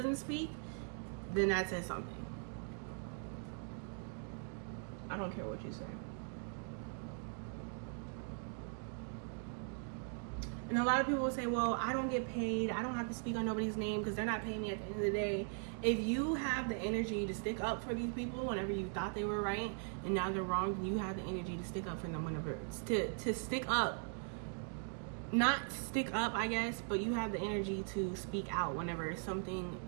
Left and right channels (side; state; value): left; silent; 51 dB below the other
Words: speak, then that says something. I don't care what you say. And a lot of people will say, well, I don't get paid. I don't have to speak on nobody's name because they're not paying me at the end of the day. If you have the energy to stick up for these people whenever you thought they were right and now they're wrong, then you have the energy to stick up for them whenever, to stick up. Not stick up, I guess, but you have the energy to speak out whenever something